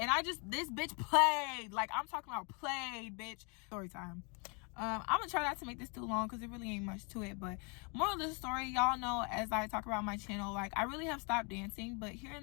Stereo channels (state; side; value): quieter; right; 34.0 dB